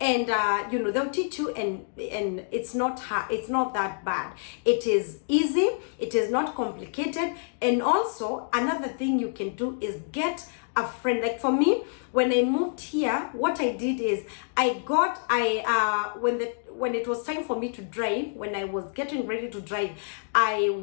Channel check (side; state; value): right; silent; digital silence